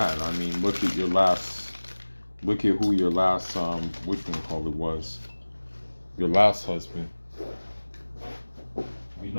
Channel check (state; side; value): inverted; both; correlation -1.00